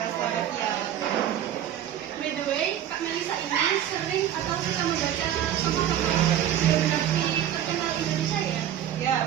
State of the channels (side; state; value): left; quieter; 10.8 dB